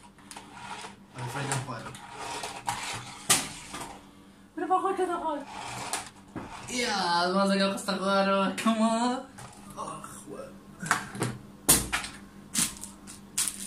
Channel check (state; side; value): identical; both; correlation 1.00